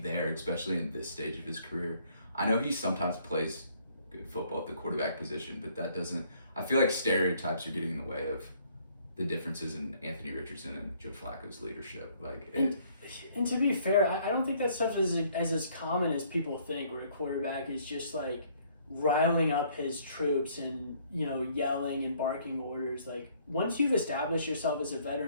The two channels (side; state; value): both; inverted; correlation -0.63